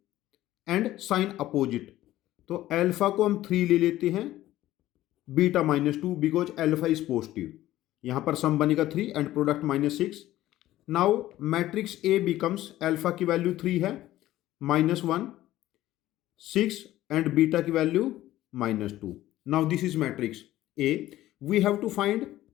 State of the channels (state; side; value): quieter; right; 14.8 dB